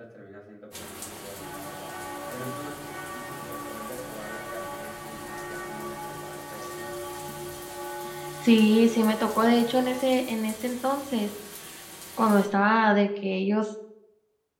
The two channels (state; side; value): identical; both; correlation 1.00